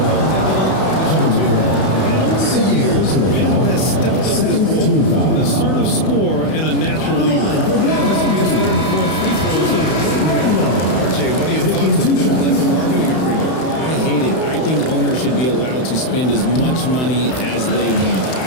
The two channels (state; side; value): late; right; 31 ms